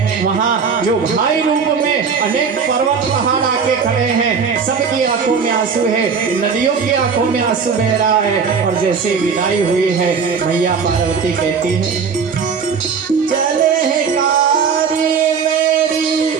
वहाँ जो भाई रूप में अनेक पर्वत पहाड़ आके खड़े हैं, सबकी आंखों में आंसू है, नदियों की आंखों में आंसू बह रहा है। और जैसे विदाई हुई है, मैया पार्वती कहती है चले है कारी मेरी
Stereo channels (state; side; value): quieter; left; 5.9 dB